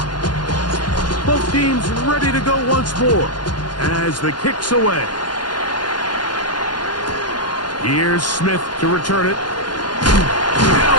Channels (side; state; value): right; late; 0.71 ms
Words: Both teams ready to go once more as the kick's away. Here's Smith to return it. He